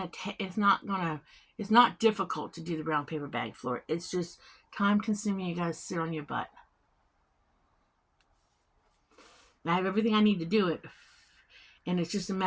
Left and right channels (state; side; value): identical; both; correlation 1.00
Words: It's not difficult to do the brown paper bag floor. It's just time consuming. You gotta sit on your butt. I have everything I need to do it, and it's just a